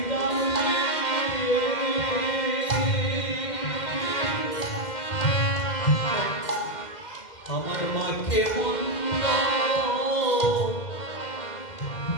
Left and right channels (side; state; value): right; late; 2.1 ms